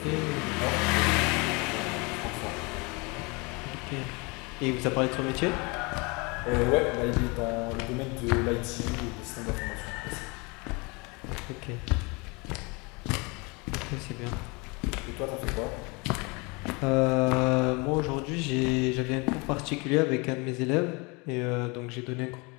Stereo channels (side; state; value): right; quieter; 28.4 dB